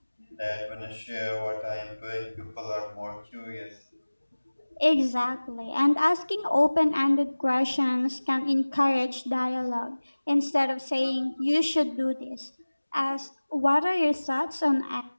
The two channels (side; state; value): both; inverted; correlation -1.00